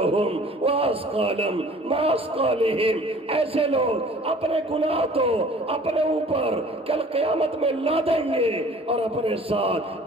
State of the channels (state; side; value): normal; both; correlation 0.49